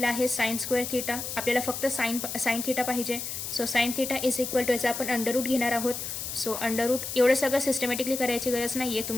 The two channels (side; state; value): left; noise; hiss, 5 dB below the sound